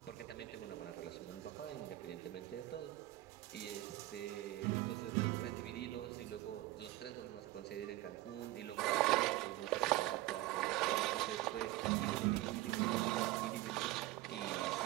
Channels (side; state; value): left; quieter; 17.4 dB